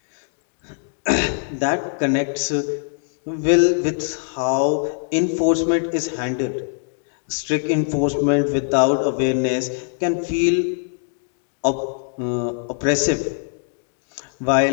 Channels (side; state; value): right; silent; digital silence